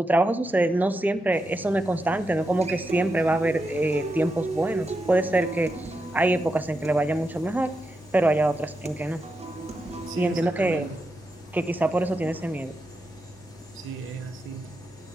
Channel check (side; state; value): both; normal; correlation 0.86